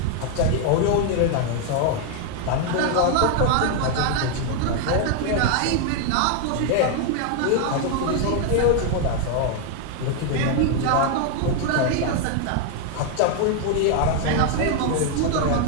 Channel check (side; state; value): both; different; correlation 0.00